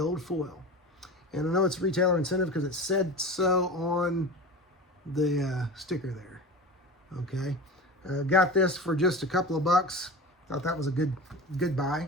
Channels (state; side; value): normal; both; correlation 0.32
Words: foil. And I know it's retailer incentive because it said so on the sticker there. Okay. Got this for just a couple of bucks. Thought that was a good buy.